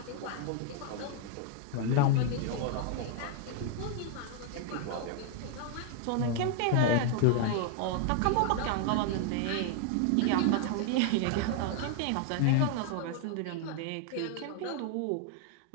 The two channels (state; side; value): different; both; correlation 0.00